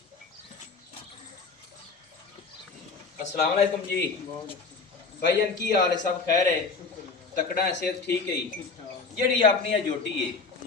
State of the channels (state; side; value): quieter; right; 4.4 dB